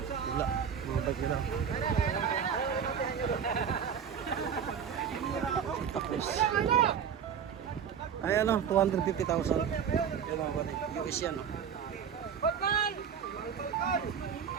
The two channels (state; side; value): quieter; left; 7.6 dB